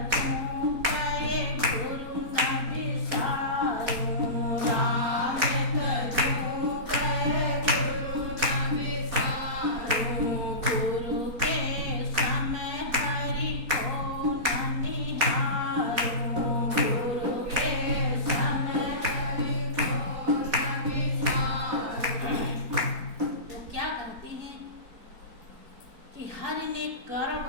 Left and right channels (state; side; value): late; left; 4.2 ms